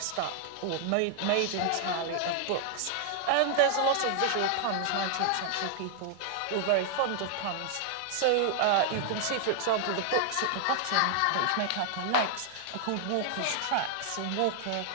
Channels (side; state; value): both; different; correlation 0.00